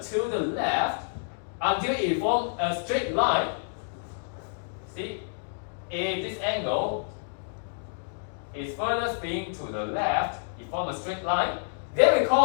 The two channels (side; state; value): right; silent; digital silence